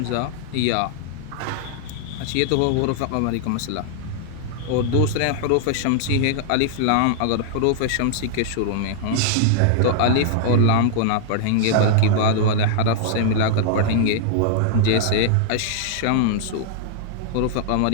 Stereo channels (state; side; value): different; both; correlation -0.01